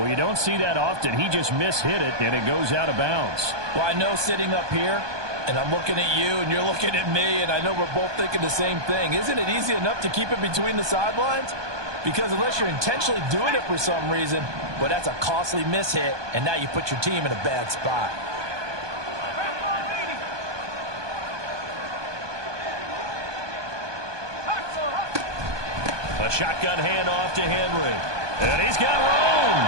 you don't see that often. He just mishit it, and it goes out of bounds. Well, I know sitting up here, and I'm looking at you, and you're looking at me, and I know we're both thinking the same thing. Isn't it easy enough to keep it between the sidelines? Because unless you're intentionally doing it for some reason, well, that's a costly mishit, and now you put your team in a bad spot. A shotgun handoff to Henry. And he's got room.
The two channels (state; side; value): late; left; 1.2 ms